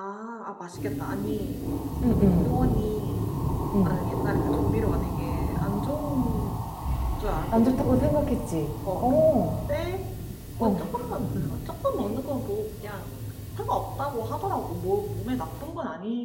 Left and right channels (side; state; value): both; identical; correlation 1.00